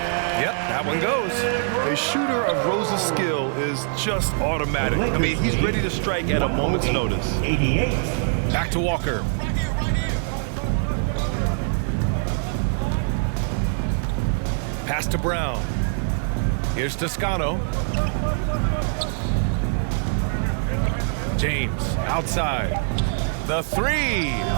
Yep, that one goes. A shooter of Rose's skill is just automatic. I mean, he's ready to strike at a moment's notice. 88. Back to Walker. Pass to Brown. Here's Toscano. James outside. The three.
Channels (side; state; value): left; silent; digital silence